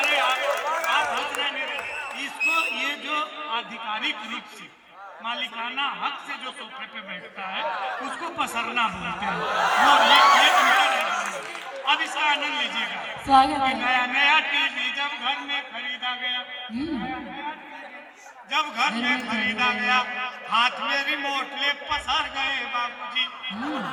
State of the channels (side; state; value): both; identical; correlation 1.00